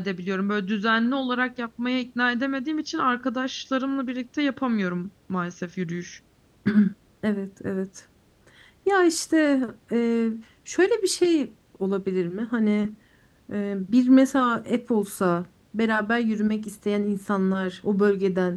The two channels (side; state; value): both; identical; correlation 1.00